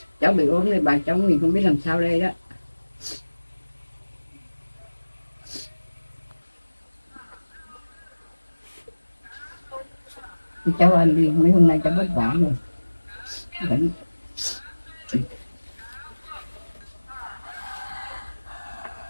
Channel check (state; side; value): inverted; both; correlation -1.00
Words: cháu bị ốm thì bà cháu mình không biết làm sao đây đó. Cháu ăn đi, mấy hôm nay cháu vất vả rồi. Vẫn